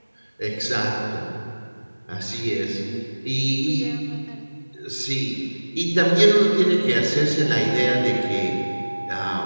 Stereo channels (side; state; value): both; inverted; correlation -1.00